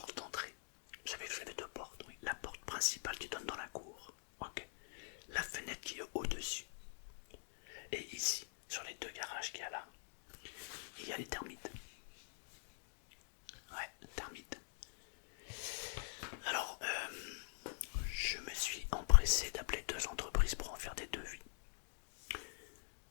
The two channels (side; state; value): right; silent; digital silence